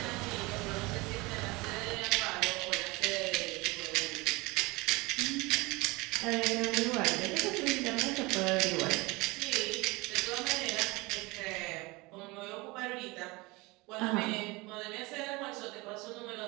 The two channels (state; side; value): quieter; left; 23.7 dB